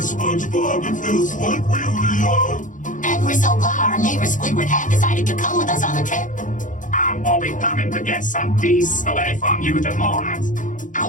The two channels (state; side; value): late; right; 0.37 ms